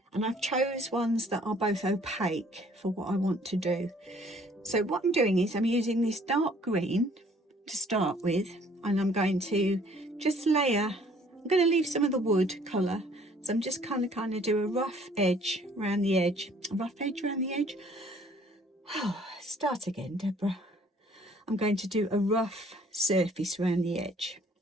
And I've chose ones that are both opaque for what I want to do. So what I'm doing is I'm using this dark green to start with, and I'm going to just layer. I'm going to leave some of the wood colour, so I'm just kind of do a rough edge around the edge. A rough edge around the edge. Oh, start again, Deborah. I'm going to do a rough surface around the edge,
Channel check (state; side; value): normal; both; correlation 0.58